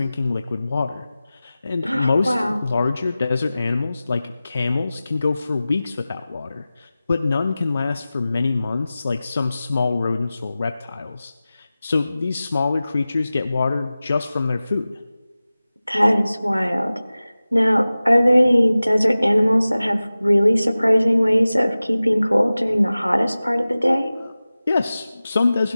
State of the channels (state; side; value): inverted; both; correlation -0.96